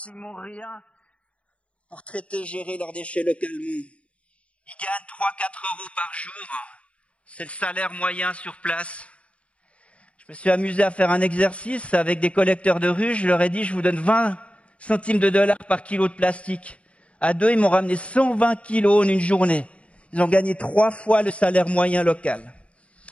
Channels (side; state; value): right; late; 0.064 ms